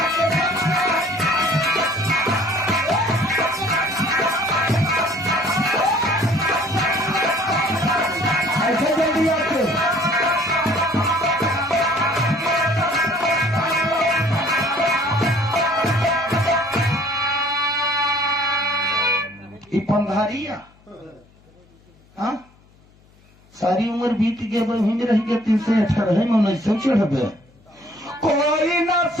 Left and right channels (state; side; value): noise; left; hum, 30 dB below the sound